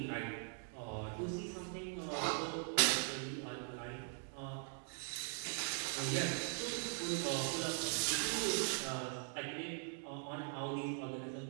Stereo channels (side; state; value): left; silent; 50 dB below the other